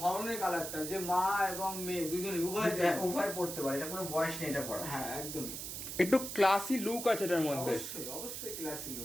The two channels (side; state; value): right; noise; hiss, 6 dB below the sound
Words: কালারটা, যে মা এবং মেয়ে দুজনে উভয় পড়তে পারে, এটা কোনো বয়স নেই এটা পড়া। হ্যাঁ একদমই, একটু ক্লাসি লুক আছে এটার মধ্যে। অবশ্যই ক্লাসি